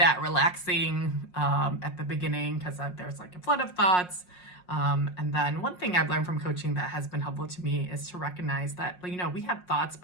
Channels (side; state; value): right; late; 5.5 ms